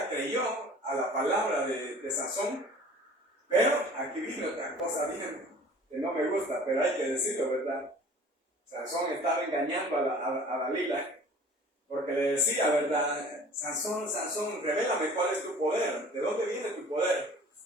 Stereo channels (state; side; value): normal; both; correlation 0.47